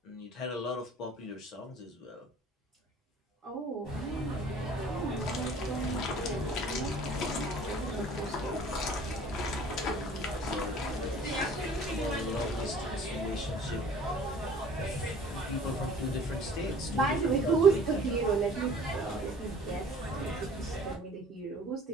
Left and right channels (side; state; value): both; normal; correlation 0.50